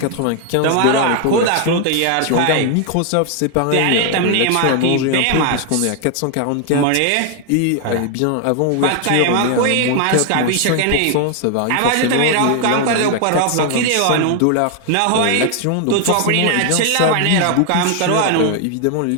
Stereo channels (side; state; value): both; different; correlation 0.00